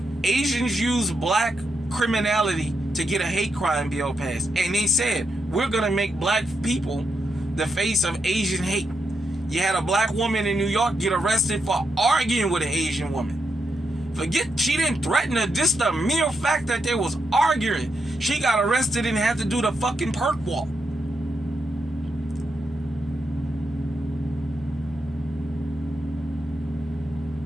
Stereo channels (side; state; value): both; normal; correlation 0.83